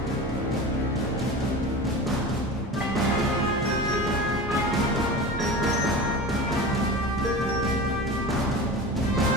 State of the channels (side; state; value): both; normal; correlation 0.31